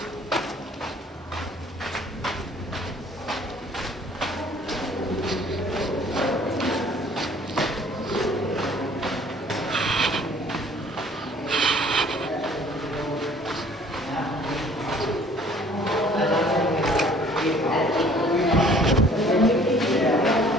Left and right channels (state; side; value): normal; both; correlation 0.55